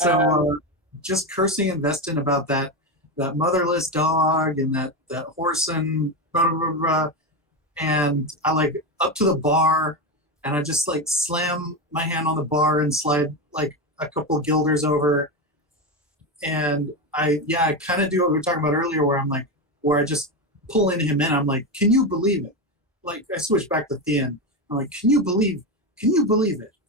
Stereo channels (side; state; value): both; normal; correlation 0.15